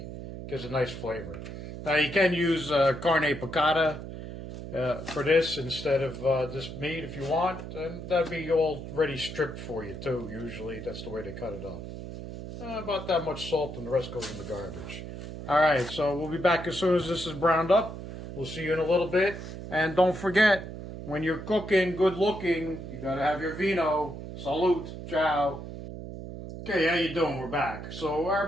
Gives a nice flavor. Now you can use carne piccata for this instead of this meat if you want. And that'd be already stripped for you too. Usually that's the way they cut it up. About that much salt and the rest goes in the garbage. Alright, so we'll be back as soon as this is browned up. We'll see you in a little bit. And don't forget, when you're cooking good looking, you gotta have your vino. Salute. Ciao. Okay, how you doing? We're back. So our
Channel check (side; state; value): right; noise; hum, 10 dB below the sound